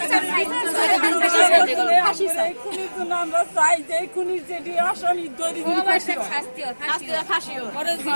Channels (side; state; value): both; inverted; correlation -1.00